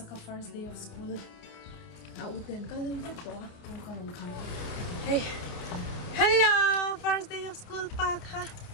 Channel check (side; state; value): right; late; 29 ms